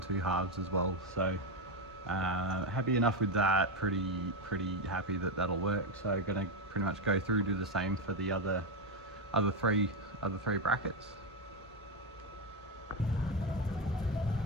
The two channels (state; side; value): normal; both; correlation 0.08